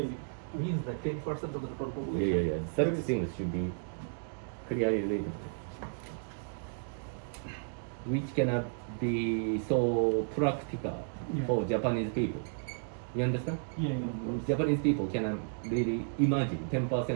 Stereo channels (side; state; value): left; silent; digital silence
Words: means that 10% of the total population. Yeah. Such things should be clearly written. Which cannot be so practical Yeah. for Japanese people. You understand? Yeah. Japanese people cannot really imagine